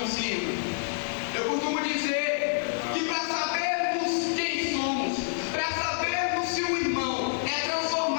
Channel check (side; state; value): right; silent; 59 dB below the other